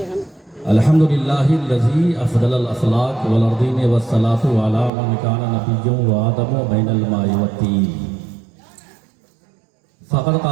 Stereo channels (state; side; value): drops out; left; at 4.9 s